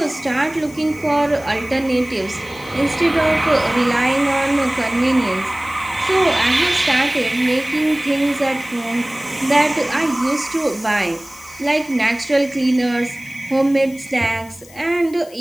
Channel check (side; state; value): left; noise; hiss, 22 dB below the sound